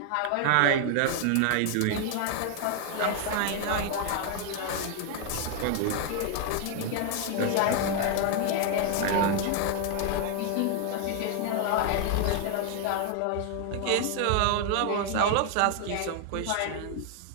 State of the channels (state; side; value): different; both; correlation 0.00